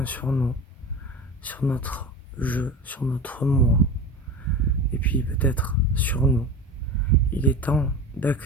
sur nous, sur notre jeu, sur notre moi, et puis peut-être sur nous. Il est temps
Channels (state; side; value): normal; both; correlation 0.31